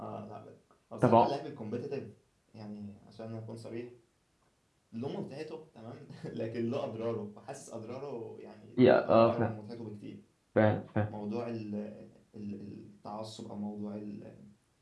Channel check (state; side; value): identical; both; correlation 1.00